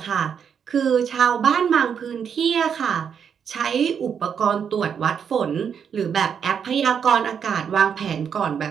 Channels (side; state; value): left; quieter; 7.4 dB